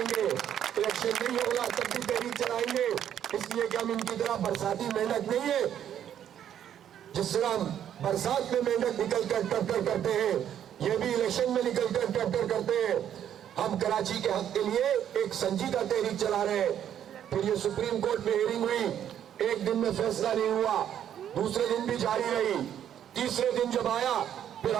گے, الیکشن نہیں ہوگا تب بھی تحریک چلائیں گے. اس لیے کہ ہم ان کی طرح برساتی محنت نہیں ہے. جس طرح ہم برسات میں محنت نکل کر ٹرٹر کرتے ہیں, یہ بھی الیکشن میں نکل کر ٹرٹر کرتے ہیں. ہم کراچی کے حق کے لیے ایک سنجیدہ تحریک چلا رہے ہیں. پھر یہ سپریم کورٹ میں ہیئرنگ ہوئی, 1 دن میں فیصلہ نہیں ہوا, دوسرے دن بھی جاری رہی. تیسرے دن جب آیا پھر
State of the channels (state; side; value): quieter; left; 10.0 dB